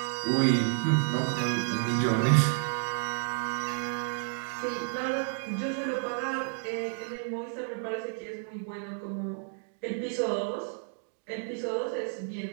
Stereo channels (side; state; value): left; silent; 57 dB below the other